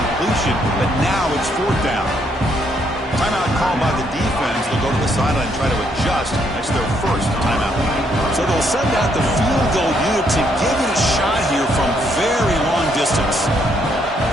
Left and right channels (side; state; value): both; normal; correlation 0.72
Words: but now it's fourth down. Timeout called by the defense. They'll go to the sideline and try to adjust. That's their first timeout. So they'll send out the field goal unit to give it a shot here from very long distance.